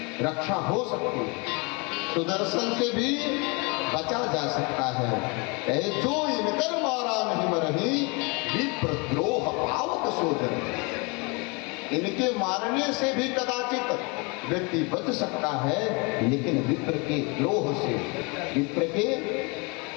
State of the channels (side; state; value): right; quieter; 29.8 dB